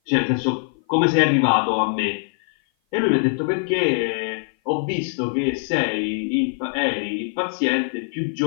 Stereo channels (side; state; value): right; silent; 56 dB below the other